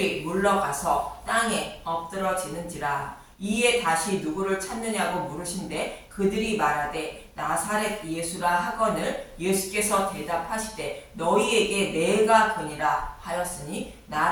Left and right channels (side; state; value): both; identical; correlation 1.00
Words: 물러가서 땅에 엎드러지는지라. 이에 다시 누구를 찾느냐고 물으신데 그들이 말하되 나사렛 예수라 하거늘 예수께서 대답하시되 너희에게 내가 그니라 하였으니